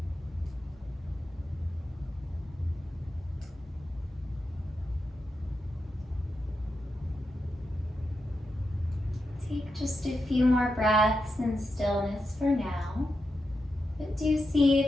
Take just a few more breaths in stillness for now, but do see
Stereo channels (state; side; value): normal; both; correlation 0.87